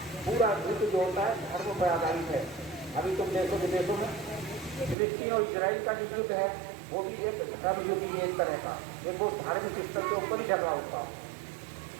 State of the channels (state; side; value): drops out; left; at 5.0 s